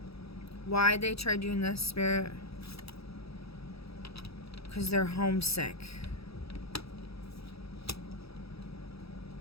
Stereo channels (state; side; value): late; right; 0.77 ms